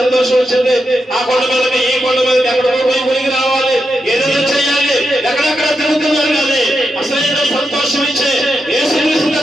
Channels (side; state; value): both; normal; correlation 0.86